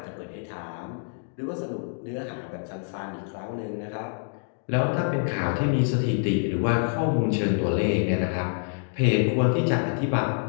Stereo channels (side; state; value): right; silent; digital silence